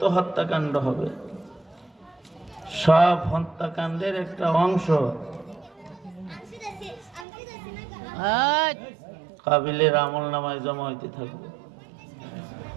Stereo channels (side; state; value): left; drops out; at 7.2 s